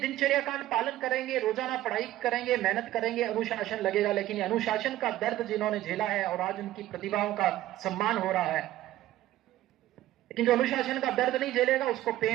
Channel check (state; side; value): quieter; left; 14.6 dB